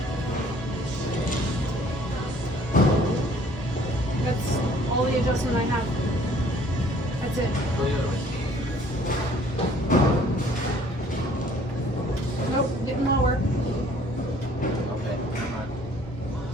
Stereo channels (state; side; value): normal; both; correlation 0.57